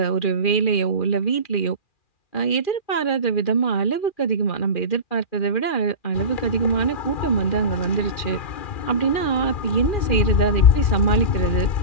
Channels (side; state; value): right; late; 2.4 ms